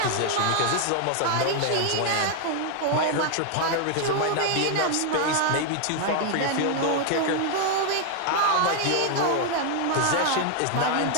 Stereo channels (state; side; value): different; both; correlation 0.00